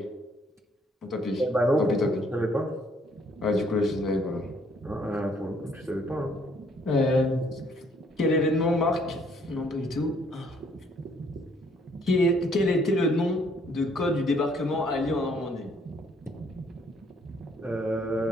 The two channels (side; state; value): both; normal; correlation 0.65